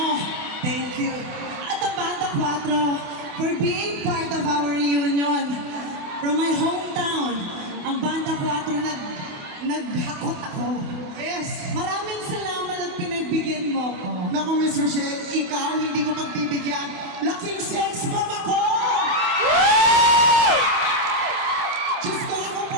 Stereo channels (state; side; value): late; left; 28 ms